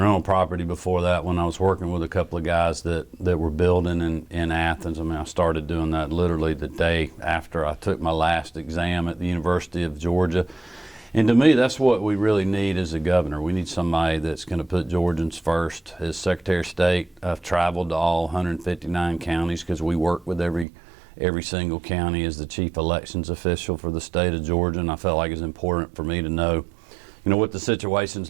property before that when I was working with a couple of guys that were building in Athens. I mean, I started doing that literally the day after I took my last exam at the University of Georgia. And to me, that's what we really need as a governor. We need somebody that's going to put Georgians first. As Secretary of State, I've traveled to all 159 counties because we work with every single county as the chief elections official for the state of Georgia. And I felt like it's important for me to know, you know, what the situation's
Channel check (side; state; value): left; drops out; at 20.7 s